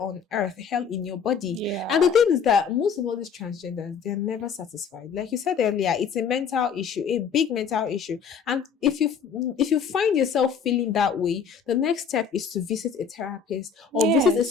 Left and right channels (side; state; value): right; quieter; 6.4 dB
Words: earth, hell in your body. Yeah. And the thing is that most of all these transgenders, they're never satisfied. Like you said earlier, it's a mental issue, a big mental issue. And if you find yourself feeling that way, the next step is to visit a therapist or visit a